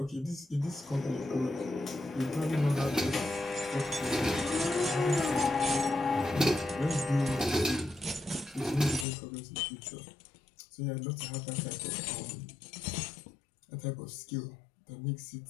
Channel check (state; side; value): drops out; right; at 9.1 s